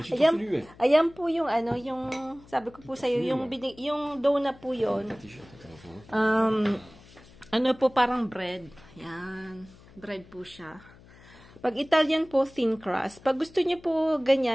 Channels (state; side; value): noise; left; hum, 23 dB below the sound